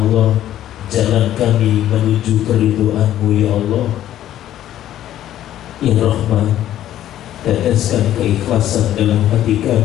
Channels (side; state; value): right; quieter; 12.2 dB